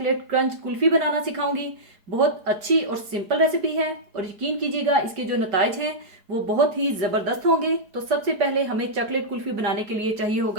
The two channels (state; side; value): late; left; 4.8 ms